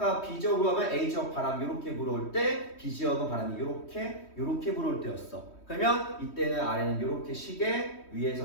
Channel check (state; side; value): late; right; 3.1 ms